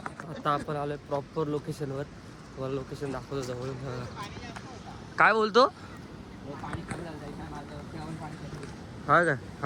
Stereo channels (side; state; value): both; identical; correlation 1.00